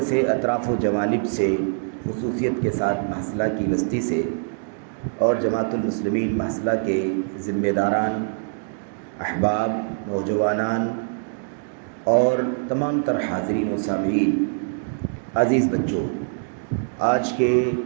سے اطراف و جوانب سے خصوصیت کے ساتھ محصلہ کی بستی سے اور جماعت المسلمین محصلہ کے ذمہ داران، احباب، نوجوانان اور تمام تر حاضرین و سامعین، عزیز بچوں، آج کے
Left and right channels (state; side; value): silent; left; digital silence